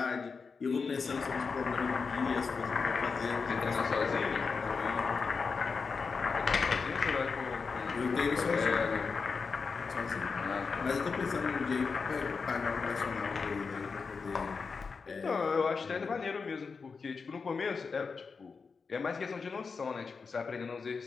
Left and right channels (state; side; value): quieter; right; 5.0 dB